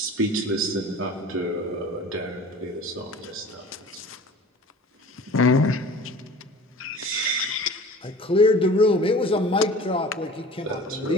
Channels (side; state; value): both; normal; correlation 0.42